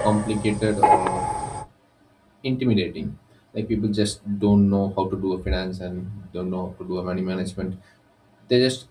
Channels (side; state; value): both; identical; correlation 1.00